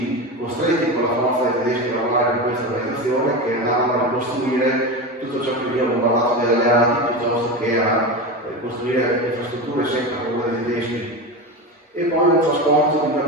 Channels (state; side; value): normal; both; correlation 0.22